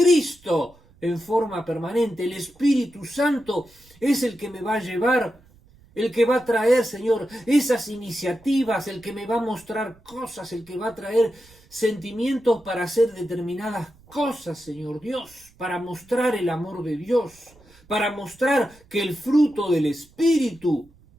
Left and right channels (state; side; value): noise; right; rumble, 28 dB below the sound